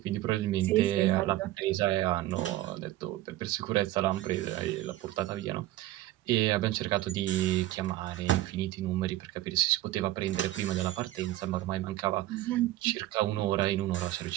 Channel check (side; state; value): left; quieter; 15.5 dB